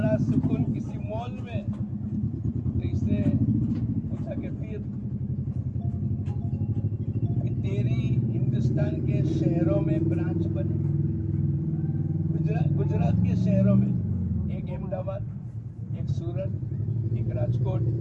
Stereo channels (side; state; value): both; identical; correlation 1.00